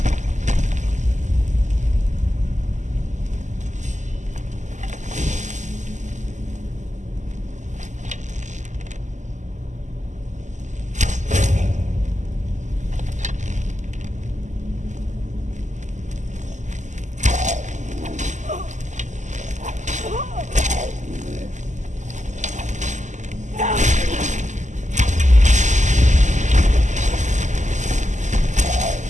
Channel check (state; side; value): late; left; 0.34 ms